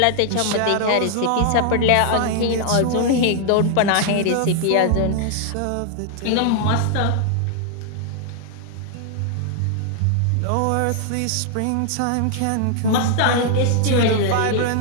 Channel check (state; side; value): different; both; correlation -0.01